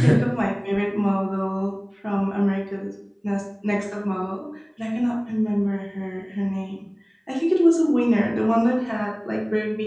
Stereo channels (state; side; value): identical; both; correlation 1.00